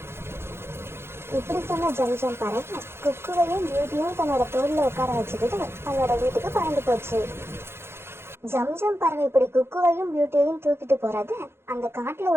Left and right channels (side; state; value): left; late; 0.12 ms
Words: இப்படி சொன்ன ஜம்ஜம் பறவை குக்குவையும் பியூட்டியும் தன்னோட தோல்ல உட்கார வச்சுக்கிட்டு தன்னோட வீட்டுக்கு பறந்து போச்சு. ஜம்ஜம் பறவை இப்படி குக்குவையும் பியூட்டியையும் தூக்கிட்டு போறத அந்த காட்டுல